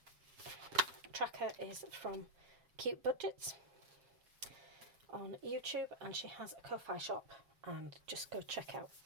tracker is from Cute Budgets on YouTube, and she has a Ko-Fi shop, and just go check out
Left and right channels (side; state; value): left; late; 7.3 ms